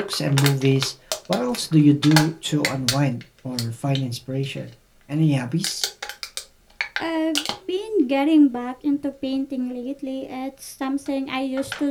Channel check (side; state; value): both; identical; correlation 1.00